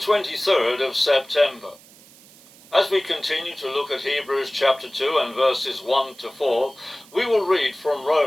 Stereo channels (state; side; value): noise; right; hiss, 24 dB below the sound